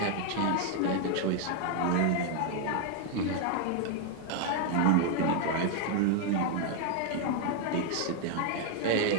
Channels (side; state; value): both; different; correlation 0.00